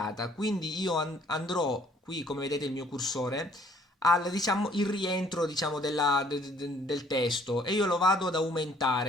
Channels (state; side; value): normal; both; correlation 0.61